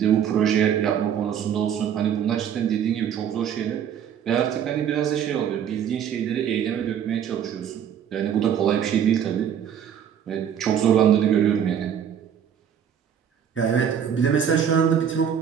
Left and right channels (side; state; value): left; quieter; 8.6 dB